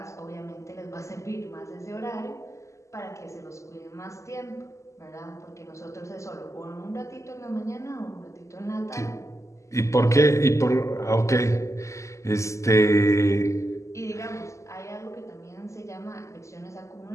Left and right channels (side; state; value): right; late; 0.14 ms